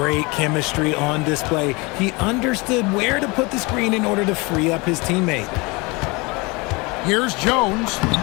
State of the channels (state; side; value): quieter; right; 26.3 dB